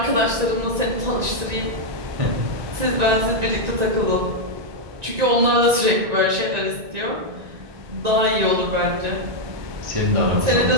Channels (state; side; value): late; left; 1.9 ms